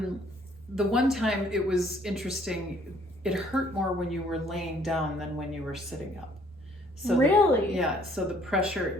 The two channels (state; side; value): normal; both; correlation 0.61